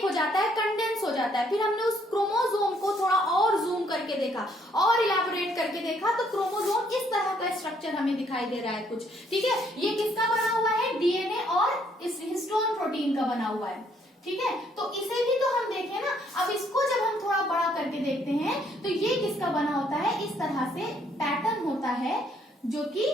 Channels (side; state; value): both; normal; correlation 0.67